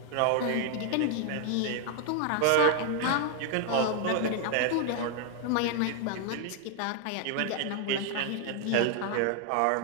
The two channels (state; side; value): different; both; correlation 0.00